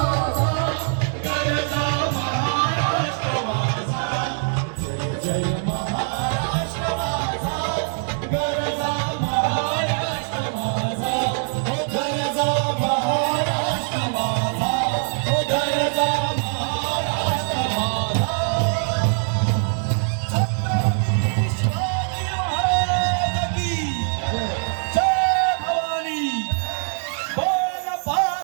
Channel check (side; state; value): left; silent; digital silence